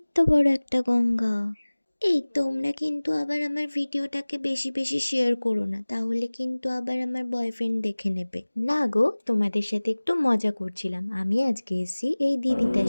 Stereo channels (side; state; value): both; inverted; correlation -1.00